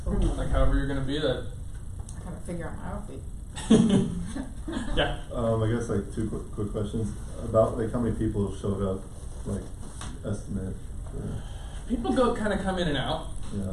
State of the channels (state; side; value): identical; both; correlation 1.00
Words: like however you're gonna be. That. I gotta figure out my outfit. Yeah. I guess like two quick questions about like how many people showed up, like estimate. People come in and out Yeah.